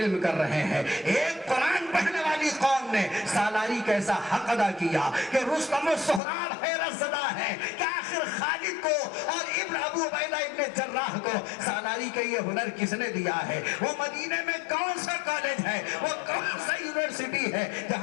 کر رہے ہیں۔ ایک قرآن پڑھنے والی قوم نے سالاری کا ایسا حق ادا کیا کہ رستم و سہراب حیرت زدہ ہے کہ آخر خالد کو اور ابن ابو عبیدہ ابن جراح کو سالاری کا یہ ہنر کس نے دیا ہے؟ وہ مدینے میں کون سا کالج ہے، وہ کون سا یونیورسٹی ہے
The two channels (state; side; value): drops out; right; at 6.2 s